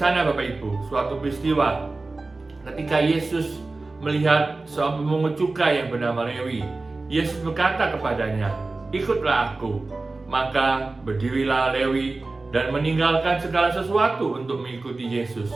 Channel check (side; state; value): left; quieter; 3.4 dB